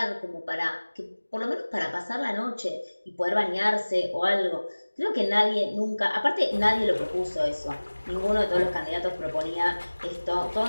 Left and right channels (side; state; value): both; inverted; correlation -1.00